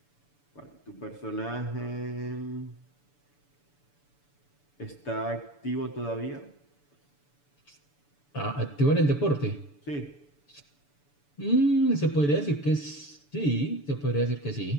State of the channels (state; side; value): late; right; 6.9 ms